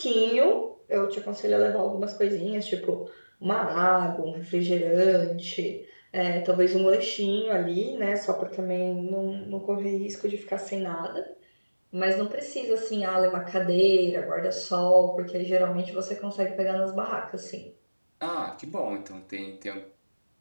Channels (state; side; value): inverted; both; correlation -1.00